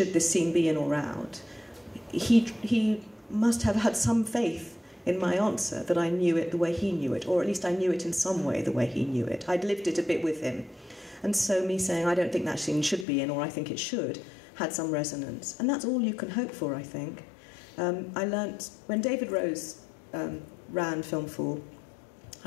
this scene be in or out, he must have had some faith in my answer that I knew it the way he knew it, or at least I knew it in some way the way he knew it. I'd lived it a bit with him. And so me saying, I don't think that scene should be in, or I think it should, had some resonance. And that's all you can hope for, I think. I learnt, when David Rose ran Film Fall,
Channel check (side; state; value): right; drops out; at 13.1 s